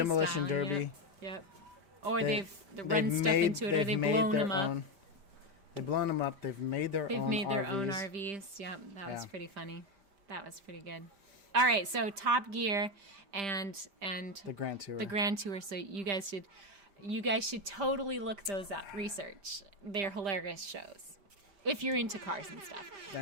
style, derby. Yep. Or They- they've run stuff into it, or they've made blown their them up. own- They've blown them up. They've made their They've own made their RVs. own RVs. Yep, that was Yeah. pretty funny. That was pretty good. All right, so Top Gear and The Grand Tour. the Grand Tour. So you guys should totally look those up. Research. They're hilarious shows if you're into cars and stuff.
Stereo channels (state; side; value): late; left; 5.0 ms